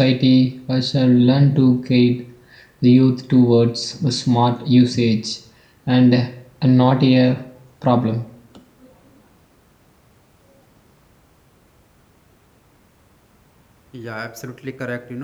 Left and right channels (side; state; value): both; identical; correlation 1.00